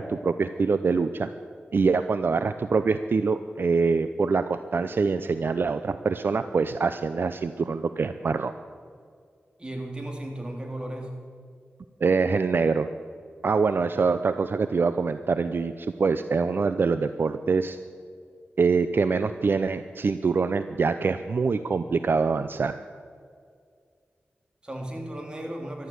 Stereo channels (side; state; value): left; quieter; 4.3 dB